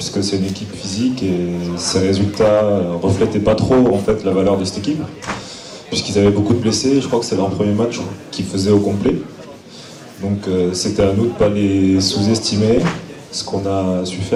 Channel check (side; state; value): both; identical; correlation 1.00